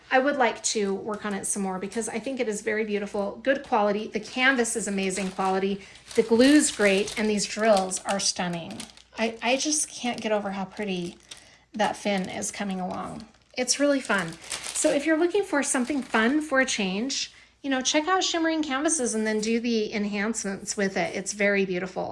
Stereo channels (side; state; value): both; identical; correlation 1.00